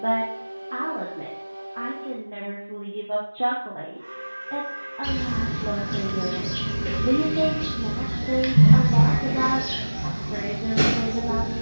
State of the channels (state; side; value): inverted; both; correlation -1.00